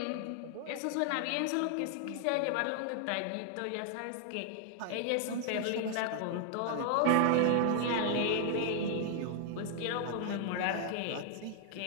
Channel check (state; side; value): different; both; correlation 0.00